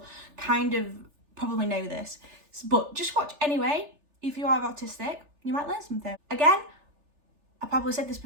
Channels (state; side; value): late; left; 3.4 ms